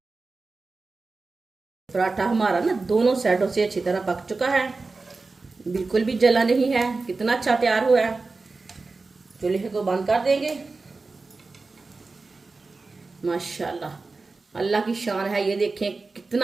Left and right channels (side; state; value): left; quieter; 3.8 dB